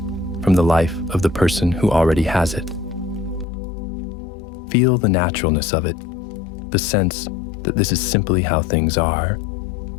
from the life of the person who already has it. Feel the naturalness of it, the sense that this is simply how things are,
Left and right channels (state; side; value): drops out; right; at 3.5 s